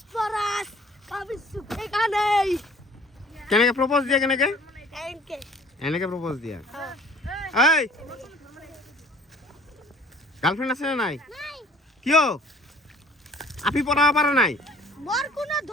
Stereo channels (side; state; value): both; normal; correlation 0.53